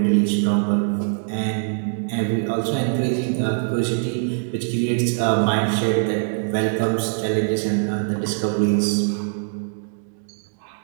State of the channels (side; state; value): left; silent; digital silence